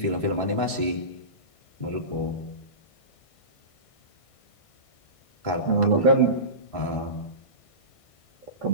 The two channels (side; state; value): right; late; 1.6 ms